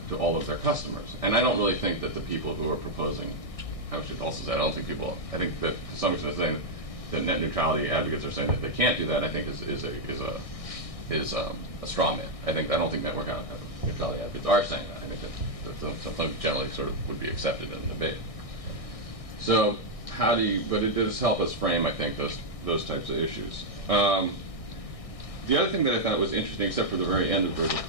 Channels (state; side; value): late; right; 1.6 ms